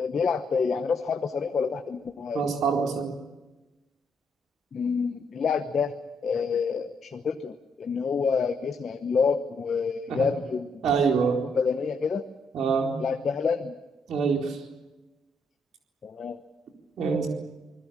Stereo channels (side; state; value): both; normal; correlation 0.74